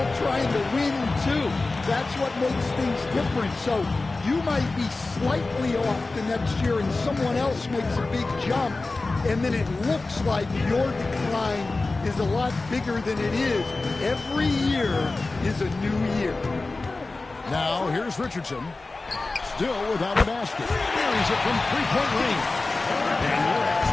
trying to win, too. That's what makes things different. So you might be slightly off the next year and someone else makes a big jump, and then it looks like your decline is a lot bigger than it is. Every year is a new year. Now, here's Richardson. Still without a basket. Buries it from three-point range. And you're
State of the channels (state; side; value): quieter; right; 3.4 dB